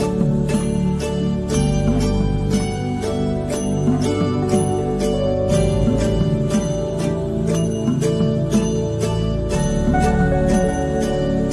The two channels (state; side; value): identical; both; correlation 1.00